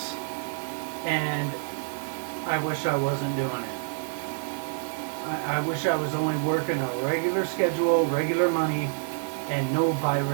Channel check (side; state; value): left; silent; digital silence